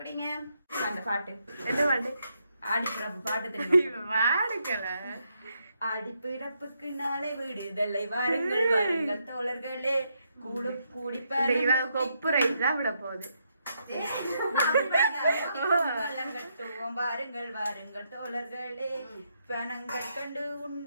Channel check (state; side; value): inverted; both; correlation -0.78